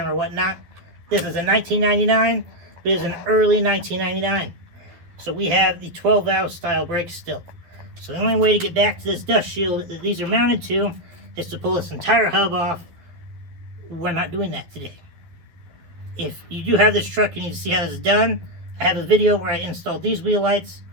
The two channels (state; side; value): late; left; 12 ms